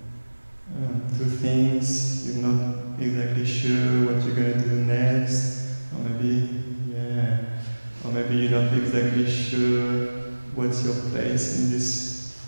things? You're not exactly sure what you're going to do next, or maybe you're not exactly sure what's your place in this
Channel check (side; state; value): both; inverted; correlation -1.00